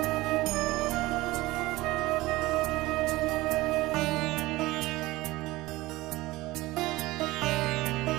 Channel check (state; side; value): quieter; left; 19.3 dB